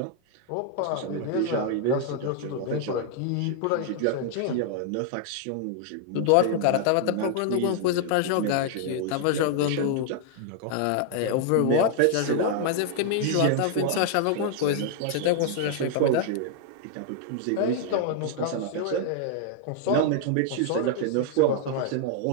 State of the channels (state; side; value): different; both; correlation 0.00